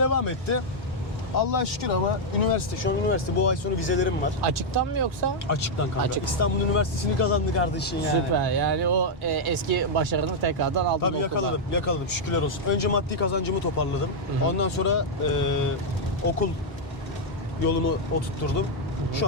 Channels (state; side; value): normal; both; correlation -0.03